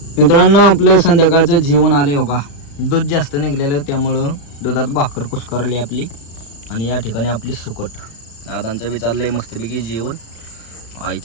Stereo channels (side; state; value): right; late; 35 ms